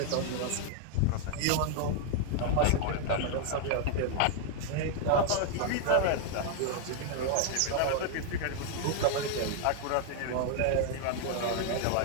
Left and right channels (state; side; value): different; both; correlation 0.00